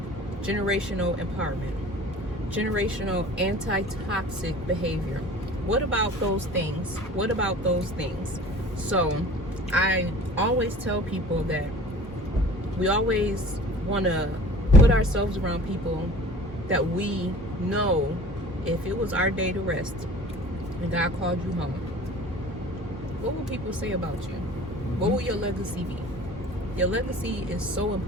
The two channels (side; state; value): both; normal; correlation 0.44